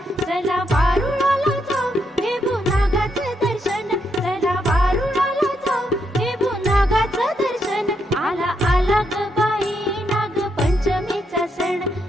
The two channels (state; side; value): normal; both; correlation 0.79